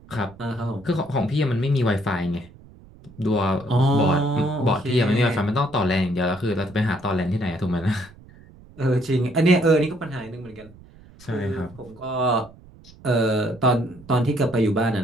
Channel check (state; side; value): noise; right; rumble, 23 dB below the sound